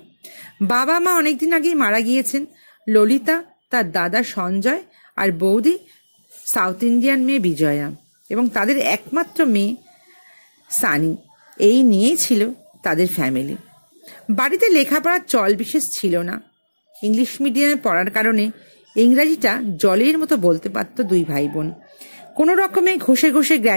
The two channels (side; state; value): both; inverted; correlation -1.00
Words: বাবা মা অনেকদিন আগেই মারা গিয়েছেন। ললিতা, তার দাদা সঞ্জয় আর বৌদি সাউথ ইন্ডিয়ান মেয়ে বিজয়া এবং তাদের একমাত্র মেয়ে সানি, এই নিয়েই ছিল তাদের ফ্যামিলি। বাড়িতে লেখাপড়ার চল বিশেষ ছিল না। ইংলিশ মিডিয়ামে পড়ার কারণে ইংরাজিটা জলের মতো বলতে পারত দুই ভাই বোন। কোনো রকমে ঘষে ঘষে